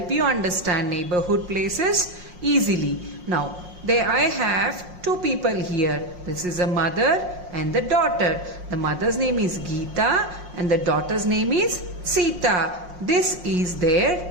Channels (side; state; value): left; late; 5.6 ms